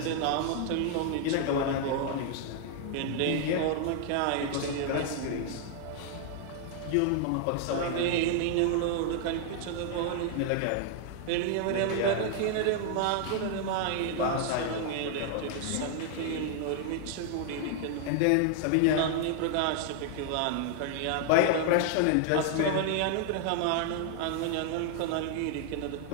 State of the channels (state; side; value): different; both; correlation 0.00